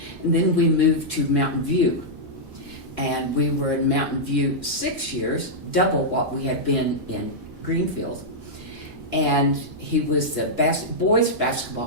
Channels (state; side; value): normal; both; correlation -0.08